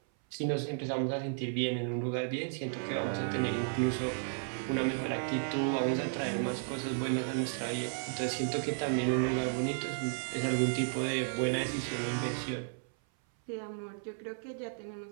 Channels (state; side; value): silent; left; 55 dB below the other